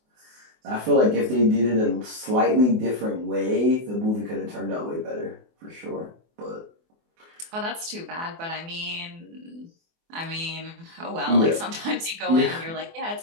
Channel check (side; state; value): left; late; 24 ms